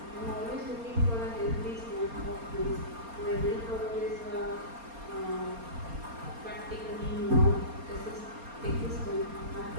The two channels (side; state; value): left; late; 4.3 ms